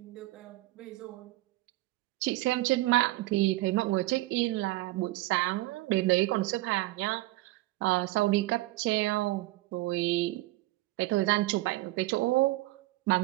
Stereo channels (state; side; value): quieter; left; 18.8 dB